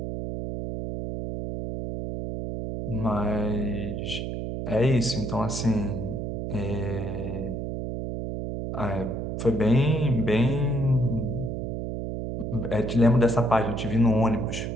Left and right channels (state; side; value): noise; right; hum, 4 dB below the sound